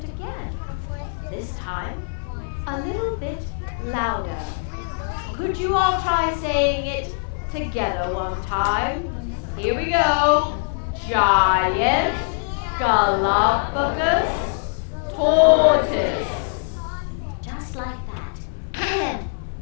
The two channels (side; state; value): right; silent; 57 dB below the other